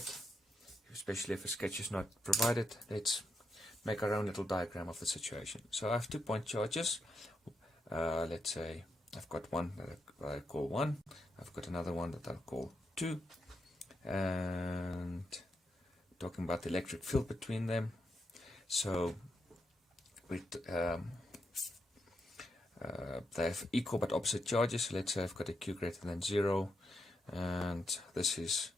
especially if a sketch is not provided, let's make our own little diagram of the situation. So I have 2 point charges. Let's say I've got one that I call 1, I've got another one that I'll call 2, and talking about the electric field between them. So they have equal but opposite charges. So let's say I've got a Q greater than 0, and this is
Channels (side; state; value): both; normal; correlation 0.82